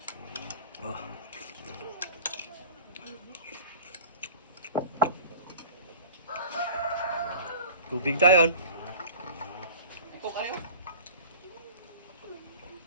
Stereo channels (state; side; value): inverted; both; correlation -0.40